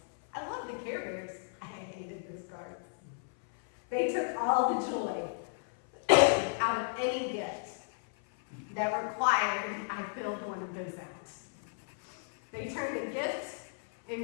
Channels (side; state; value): right; silent; 55 dB below the other